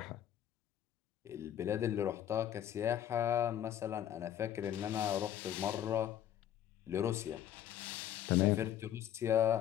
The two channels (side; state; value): right; quieter; 10.7 dB